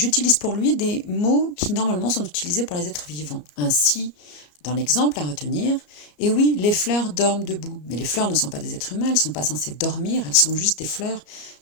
pour lui des mots qui normalement sont utilisés pour les êtres vivants. Ainsi, dans l'exemple à retenir, et oui, les fleurs dorment debout, mais les fleurs ne sont pas des êtres humains, elles ne sont pas censées dormir, elles sont juste des fleurs,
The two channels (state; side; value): late; right; 34 ms